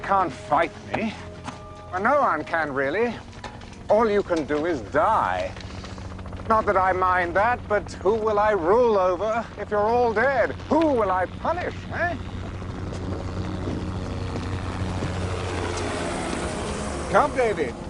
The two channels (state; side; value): identical; both; correlation 1.00